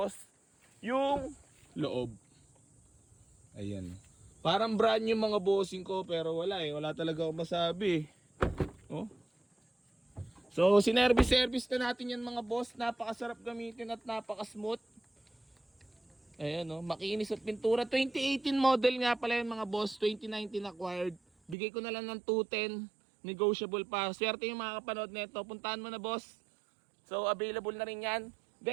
yung loob. Ayan. Parang brand new mga bossing ko, pero wala talaga akong masabi. Oh. So sinervice na natin yan mga boss. Napakasarap gamitin at napaka-smooth. Ayan makinis at pintura. 2018 model nga pala yung mga boss. 2019 acquired. Bigay ko na lang ng 210. Negotiable pa. Swerte yung mga kapanood nito. Puntahan mo na boss. So available na rin yan.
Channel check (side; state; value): left; drops out; at 21.6 s